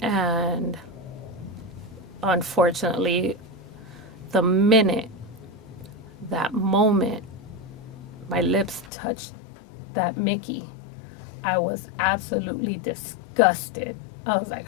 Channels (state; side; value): drops out; right; at 8.9 s